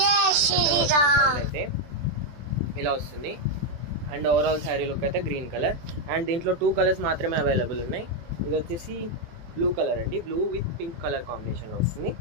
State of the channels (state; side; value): late; left; 24 ms